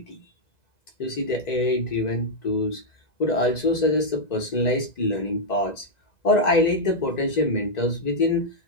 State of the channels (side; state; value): right; late; 1.9 ms